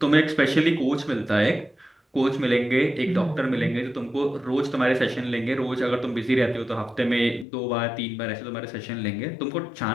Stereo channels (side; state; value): right; drops out; at 7.5 s